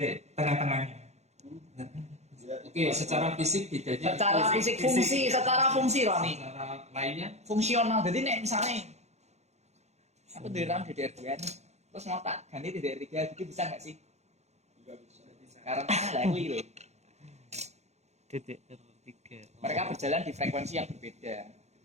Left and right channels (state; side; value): late; left; 0.32 ms